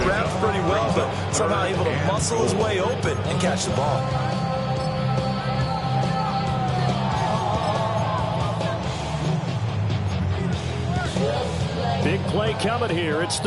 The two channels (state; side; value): identical; both; correlation 1.00